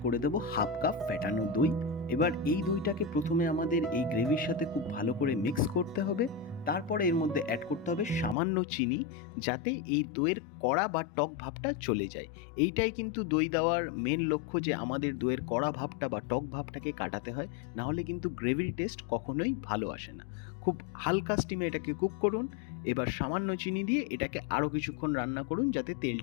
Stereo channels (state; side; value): drops out; right; at 8.3 s